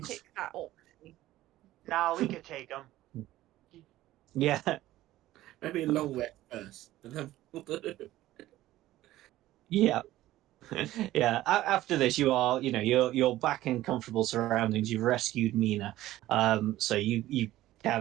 pick that option. Nah, we could take them. yeah, Maybe a long rest first. And then yeah. Yeah, after this, you are, you're back in comfortable surroundings. You've rescued Mina, so you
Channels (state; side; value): quieter; left; 15.3 dB